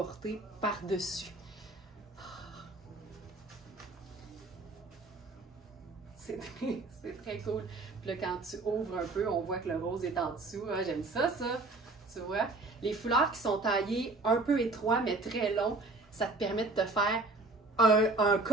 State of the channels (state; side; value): quieter; left; 3.2 dB